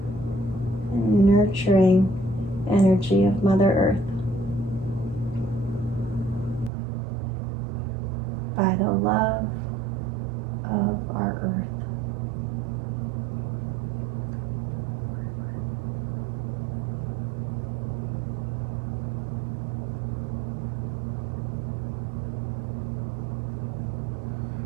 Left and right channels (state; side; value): drops out; left; at 6.7 s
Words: and nurturing energy of Mother Earth, by the love of our earth.